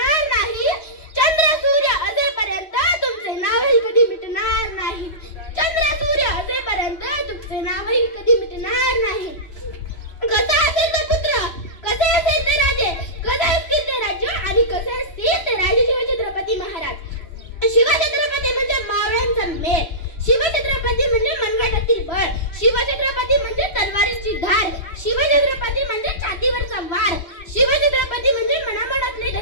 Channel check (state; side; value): late; right; 3.1 ms